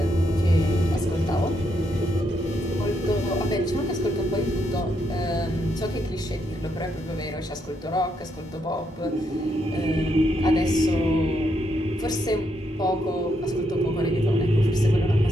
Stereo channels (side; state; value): both; normal; correlation 0.78